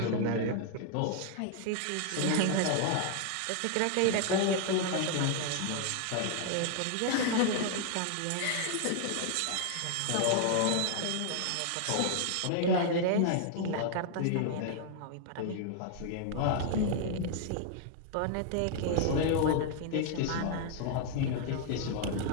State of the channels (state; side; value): different; both; correlation 0.00